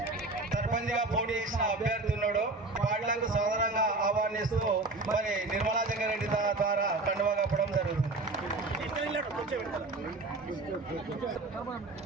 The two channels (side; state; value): left; quieter; 3.2 dB